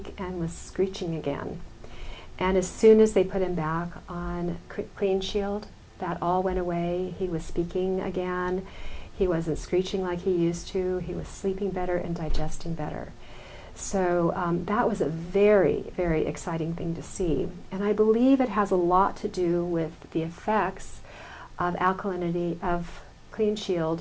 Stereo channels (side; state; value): both; identical; correlation 1.00